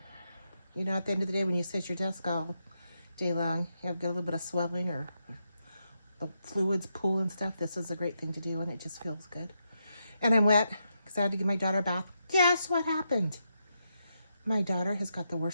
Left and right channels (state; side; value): inverted; both; correlation -0.83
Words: You know, at the end of the day, when you sit at your desk all day long, you have got a little bit of swelling or the fluids pool and stuff. This is a great thing to do, and it just feels good. And I'm wet because I had to give my daughter a bath. Guess what happened? My daughter has got the